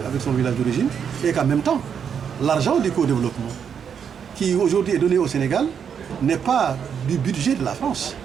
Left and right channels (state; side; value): quieter; left; 7.5 dB